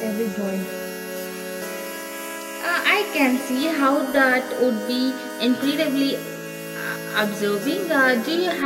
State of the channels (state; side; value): identical; both; correlation 1.00